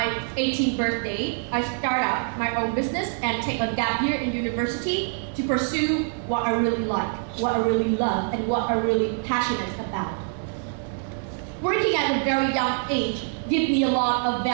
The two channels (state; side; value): silent; left; 62 dB below the other